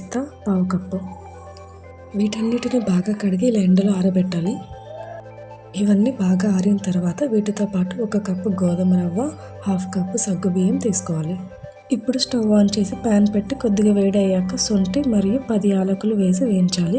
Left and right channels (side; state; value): both; identical; correlation 1.00